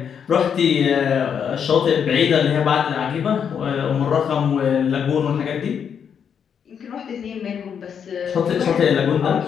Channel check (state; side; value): quieter; right; 7.6 dB